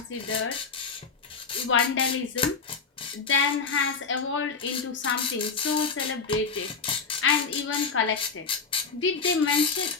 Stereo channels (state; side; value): quieter; right; 5.1 dB